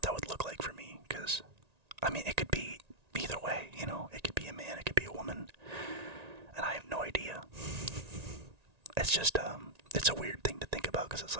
that would look like for me, because, it could be either way, it could be a man, it could be a woman, and I have no idea. It's just, it's a weird thing to think about, because it's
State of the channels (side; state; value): left; late; 1.9 ms